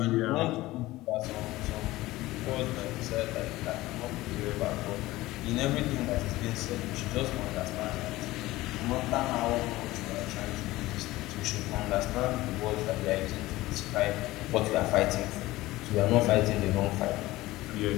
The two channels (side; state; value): right; quieter; 18.1 dB